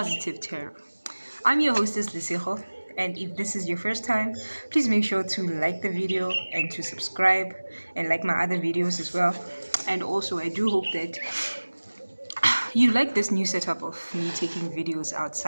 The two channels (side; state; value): both; inverted; correlation -1.00